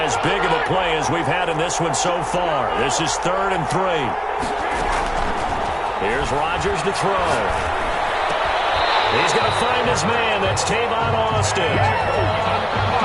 big of a play as we've had in this one so far. This is 3rd and 3. Here's Rodgers to throw. He's going to find his man. That's Tavon Austin.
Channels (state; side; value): identical; both; correlation 1.00